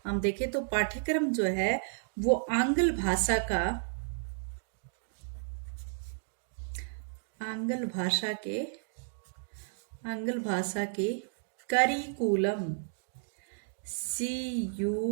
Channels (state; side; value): silent; left; digital silence